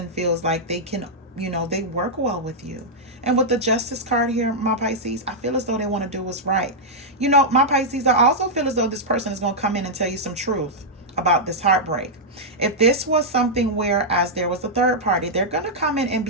feels like they can, you know, they work well with you. And with the Justice card here, my Pisces, I feel as though they want to do what's right. You know, my Pisces, I also feel as though this person is going to come in and tell you some truth about this heartbreak. If this was something where as there was a third party, they're going to come in and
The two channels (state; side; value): normal; both; correlation -0.07